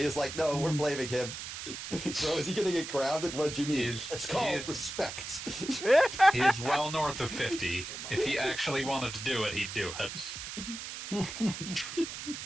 is like, "No, we're blaming him." So is he going to get grounded? What did you mean? It's called respect. he is well north of 50. If he actually wanted to do it, he'd do it.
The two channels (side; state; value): right; noise; hiss, 8 dB below the sound